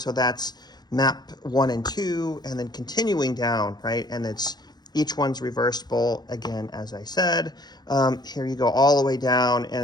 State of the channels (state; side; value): late; right; 0.20 ms